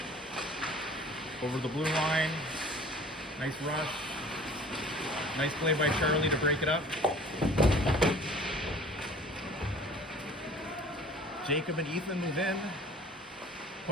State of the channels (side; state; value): both; normal; correlation 0.47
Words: Over the blue line. Nice rush. Nice play by Charlie to break it up. Jacob and Ethan move in.